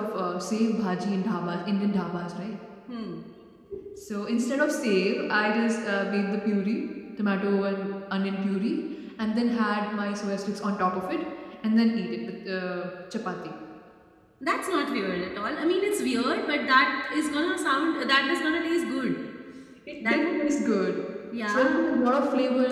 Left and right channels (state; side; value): identical; both; correlation 1.00